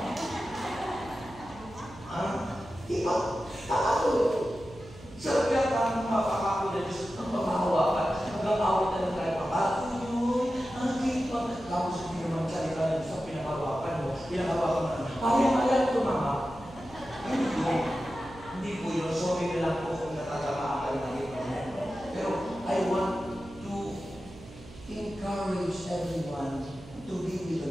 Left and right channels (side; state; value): right; noise; hum, 18 dB below the sound